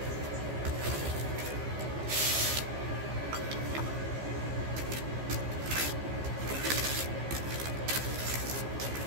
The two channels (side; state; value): left; late; 15 ms